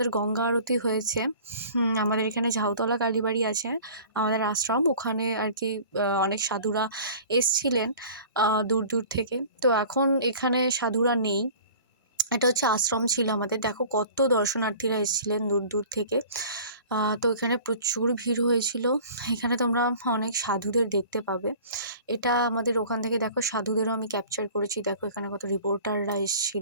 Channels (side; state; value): both; inverted; correlation -0.45